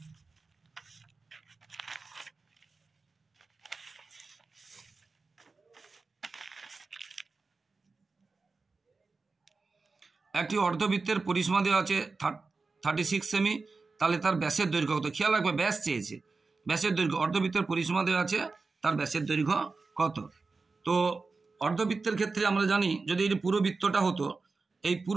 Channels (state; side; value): quieter; left; 4.1 dB